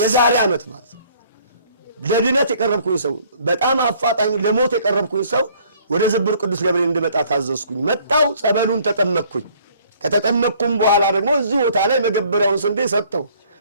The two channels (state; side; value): inverted; both; correlation -0.59